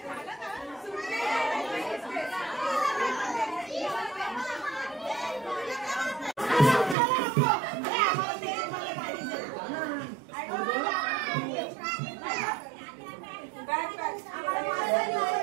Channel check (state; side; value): drops out; left; at 7.0 s